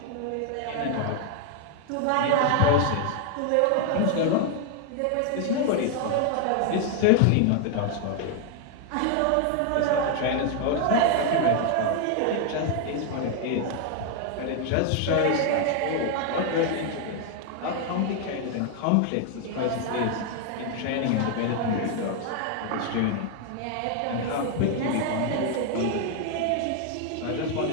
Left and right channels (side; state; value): both; different; correlation 0.00